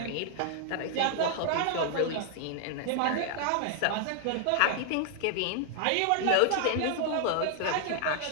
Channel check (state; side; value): different; both; correlation 0.00